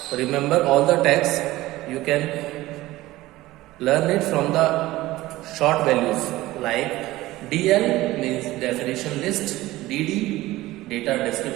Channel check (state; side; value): quieter; left; 17.5 dB